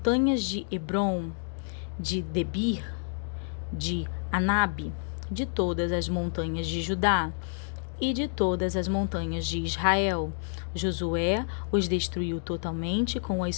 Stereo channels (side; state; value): right; silent; digital silence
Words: de Hebron, de Debir, de Anabe, de todas as montanhas de Judá e de todas as montanhas de Israel. Josué os destruiu totalmente com as